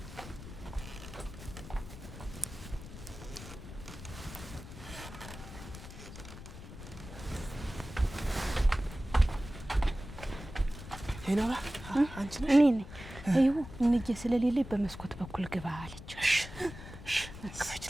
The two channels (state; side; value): noise; left; rumble, 13 dB below the sound